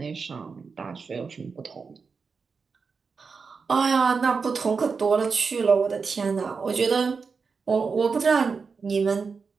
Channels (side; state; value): left; quieter; 5.1 dB